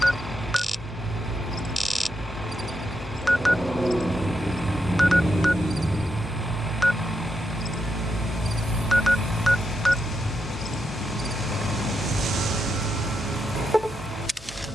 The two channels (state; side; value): normal; both; correlation 0.83